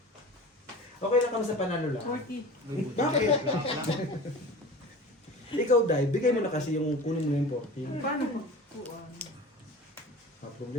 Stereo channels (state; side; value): normal; both; correlation 0.37